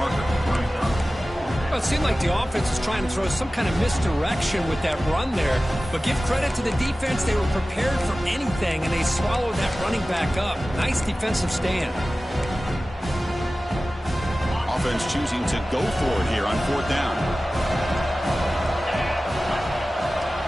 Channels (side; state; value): both; normal; correlation 0.96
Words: Well, it seemed like the offense was trying to throw some kind of misdirection with that run there. But give credit to the defense. They were prepared for anything, and they swallowed that running back up. Nice defensive stand. Offense choosing to go for it here on 4th down.